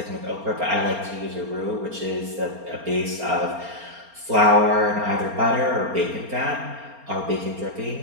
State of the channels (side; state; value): left; late; 4.3 ms